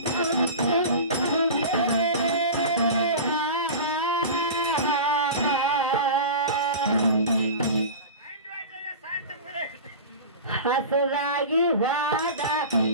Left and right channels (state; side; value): inverted; both; correlation -0.31